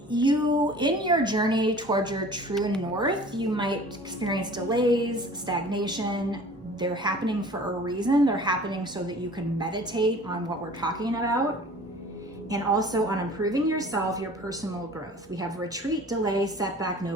you, in your journey towards your true north, you might experience delays, stagnation. They're happening for a reason. They're happening so that you can meditate on what we're talking about, and also on improving yourself, your personal growth. We have retreat, delay, setback, no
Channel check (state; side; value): normal; both; correlation 0.46